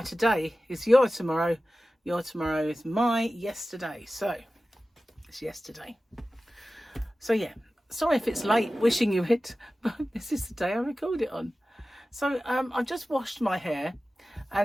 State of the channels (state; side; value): normal; both; correlation 0.95